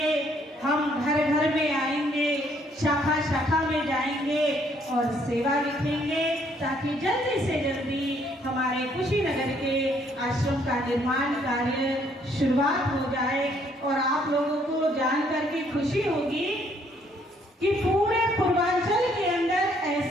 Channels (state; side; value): normal; both; correlation 0.66